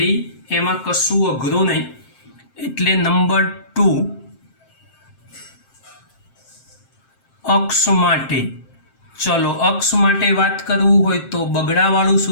એમાં કશું અઘરું નહીં, એટલે નંબર 2 અક્ષ માટે। ચલો, અક્ષ માટે વાત કરવું હોય તો બગડાવાળું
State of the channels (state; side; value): late; right; 7.6 ms